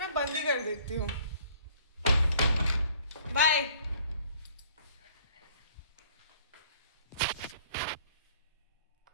बंद ही कर देती हूँ। बाय।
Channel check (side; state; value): both; inverted; correlation -0.56